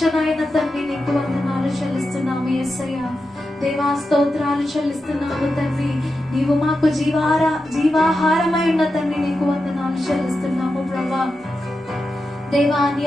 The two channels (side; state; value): both; normal; correlation 0.90